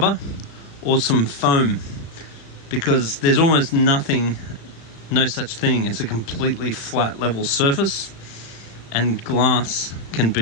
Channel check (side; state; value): right; late; 36 ms